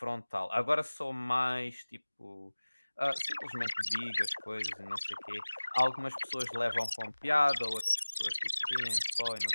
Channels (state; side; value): inverted; both; correlation -1.00